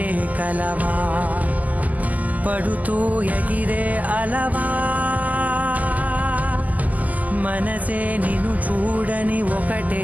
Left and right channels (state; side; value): late; left; 0.078 ms